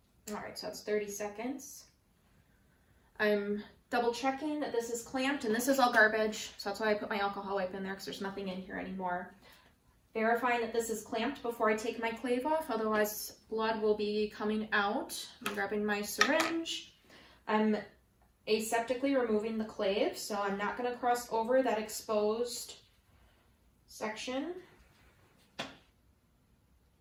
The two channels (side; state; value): both; identical; correlation 1.00